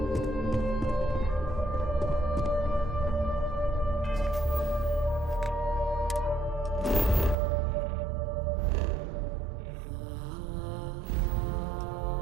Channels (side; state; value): left; drops out; at 7.4 s